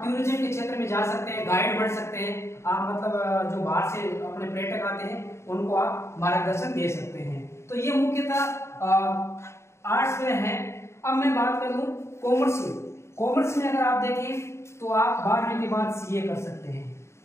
टूरिज्म के क्षेत्र में जा सकते हैं, गाइड बन सकते हैं। आप मतलब जो बाहर से अपने पर्यटक आते हैं उनको आप मार्गदर्शन दे सकते हैं। तो ये मुख्यतः आर्ट्स में है। अब मैं बात करूं कॉमर्स में अगर आप देखें तो आप 12वीं के बाद CA कर सकते हैं।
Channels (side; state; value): right; late; 0.13 ms